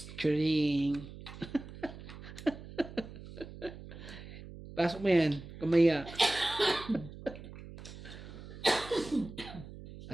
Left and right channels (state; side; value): noise; right; hum, 14 dB below the sound